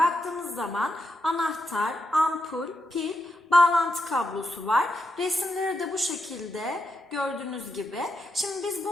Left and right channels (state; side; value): normal; both; correlation 0.84